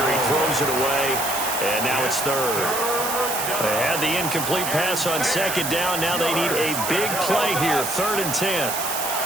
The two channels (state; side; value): noise; right; hiss, 4 dB below the sound